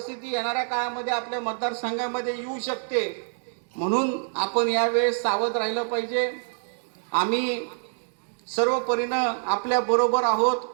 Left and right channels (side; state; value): left; silent; digital silence